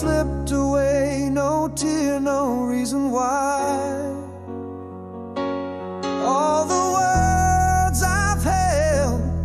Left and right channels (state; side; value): identical; both; correlation 1.00